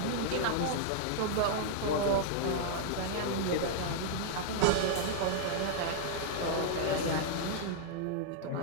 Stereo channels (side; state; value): both; different; correlation -0.01